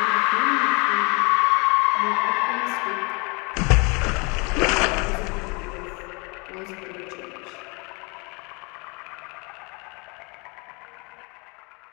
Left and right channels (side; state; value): right; quieter; 30.1 dB